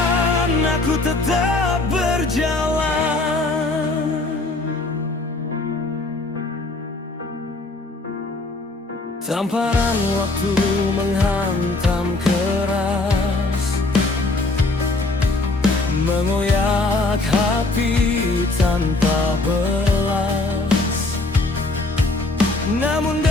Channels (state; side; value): quieter; right; 3.1 dB